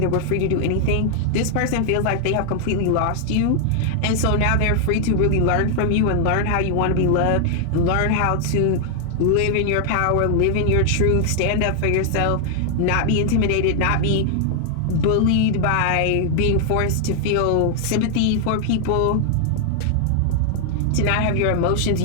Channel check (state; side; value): different; both; correlation 0.00